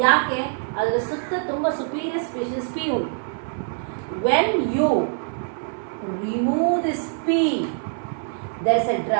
ಯಾಕೆ? ಅದರ ಸುತ್ತ ತುಂಬ ಸುಪೀರಿಯರ್ ಸ್ಪೀಷೀಸ್ ಪಿ ಉಂಟು. When you remove this P, there is a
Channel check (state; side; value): silent; left; 60 dB below the other